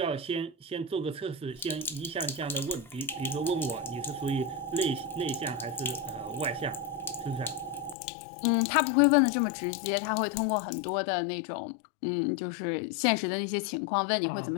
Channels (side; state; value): right; drops out; at 8.0 s